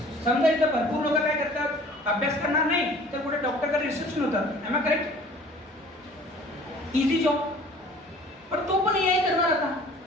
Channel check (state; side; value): normal; both; correlation 0.49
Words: समजा इथं भरपूर लोक काय करतात, अभ्यास करणार नाही तर कुठे डॉक्टरकडे रिसेप्शन होतात. Am I correct? Easy job. पण तो पण AI करणार आता.